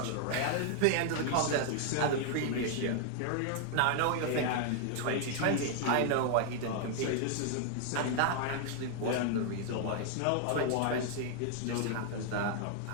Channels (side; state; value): both; different; correlation 0.00